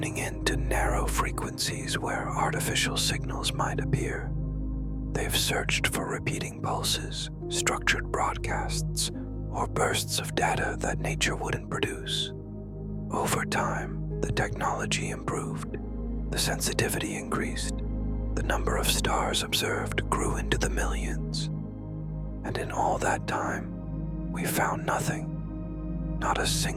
in to narrow frequencies where artificial signals might appear. They've searched for repeating pulses, structured broadcasts, or bursts of data that nature wouldn't produce. Over time, the technology improved, the sensitivity increased, the number of stars observed grew into the millions. And in all that time, we found nothing. Not a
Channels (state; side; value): identical; both; correlation 1.00